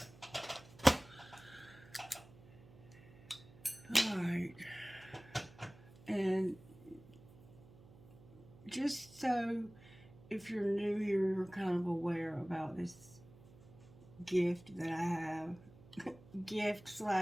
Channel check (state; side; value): noise; right; hum, 21 dB below the sound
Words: Alright, and just so if you're new here, you're kind of aware about this gift that I have. Gift